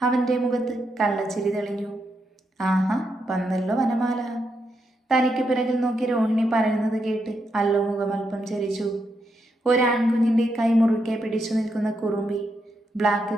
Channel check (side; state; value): both; normal; correlation 0.82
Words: അവൻ്റെ മുഖത്ത് കള്ളച്ചിരി തെളിഞ്ഞു. ആഹാ, വന്നല്ലോ വനമാല. തനിക്ക് പിറകിൽ നോക്കി രോഹിണി പറയുന്നത് കേട്ട് അല്ലോ മുഖമൽപ്പം ചരിച്ചു. ഒരാൺകുഞ്ഞിൻ്റെ കൈ മുറുക്കെ പിടിച്ചു നിൽക്കുന്ന കുറുമ്പി. ബ്ലാക്ക്